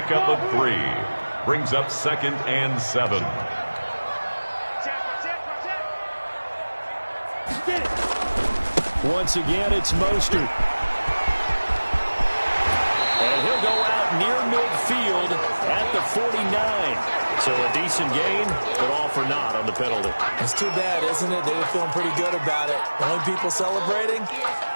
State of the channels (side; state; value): both; inverted; correlation -1.00